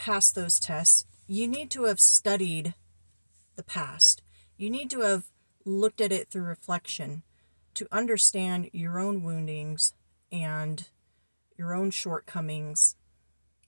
those tests, you need to have studied the past. You need to have looked at it through reflection to understand your own woundings and your own shortcomings.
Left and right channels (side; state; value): both; inverted; correlation -1.00